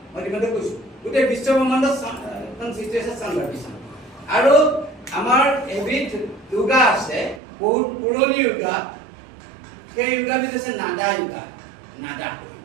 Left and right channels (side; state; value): left; drops out; at 7.4 s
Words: মই ইতিমধ্যে কৈছোঁ গোটেই বিশ্ব ব্ৰহ্মাণ্ডত সৃষ্টি হৈছে চাউণ্ড ভাইব্ৰেশ্যন। আৰু আমাৰ এবিধ য়োগা আছে, বহুত পুৰণি য়োগা, সেই য়োগাবিধ হৈছে নাদা য়োগা।